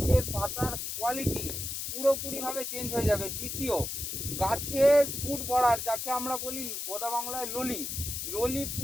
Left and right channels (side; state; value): left; noise; hiss, 4 dB below the sound